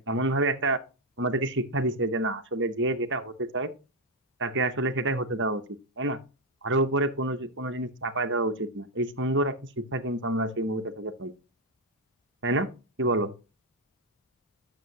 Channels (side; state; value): both; normal; correlation 0.01